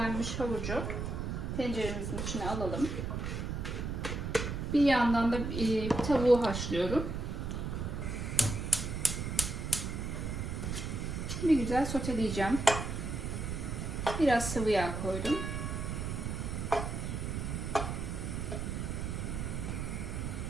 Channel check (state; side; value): noise; right; rumble, 3 dB below the sound